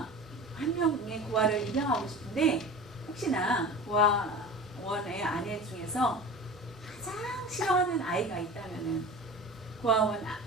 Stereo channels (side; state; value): both; normal; correlation 0.35